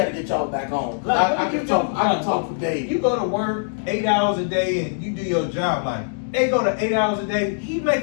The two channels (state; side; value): silent; right; digital silence